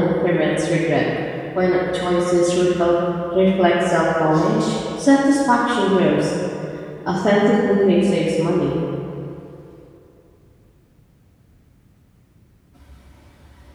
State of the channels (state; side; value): identical; both; correlation 1.00